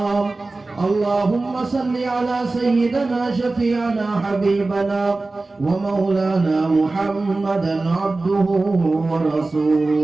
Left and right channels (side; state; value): left; quieter; 3.3 dB